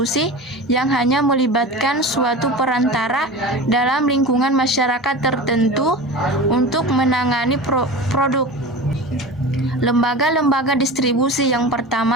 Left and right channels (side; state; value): both; normal; correlation 0.31